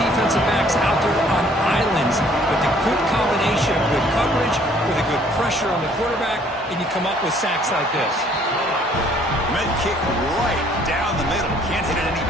defensive backs out there on islands, but the good combination of good coverage with a good pressure on the quarterback, and you come up with sacks like this. Med kick right down the middle. Can't hit it any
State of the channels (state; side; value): normal; both; correlation 0.60